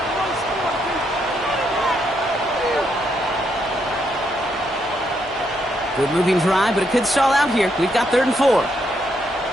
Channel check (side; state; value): both; normal; correlation 0.77